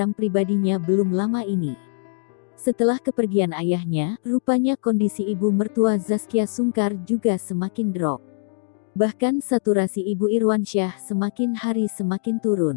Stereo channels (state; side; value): silent; right; digital silence